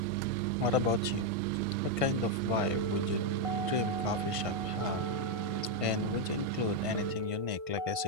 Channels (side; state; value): left; late; 1.5 ms